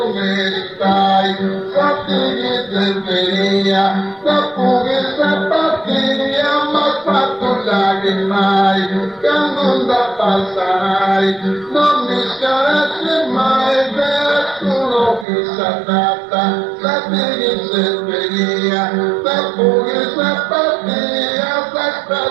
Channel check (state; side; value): drops out; left; at 15.2 s